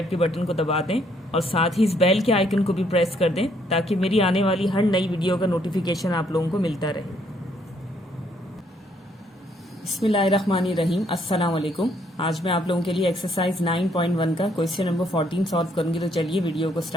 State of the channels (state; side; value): normal; both; correlation 0.68